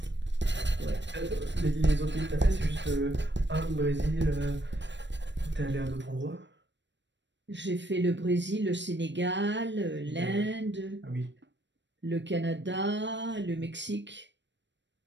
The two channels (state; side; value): late; left; 0.53 ms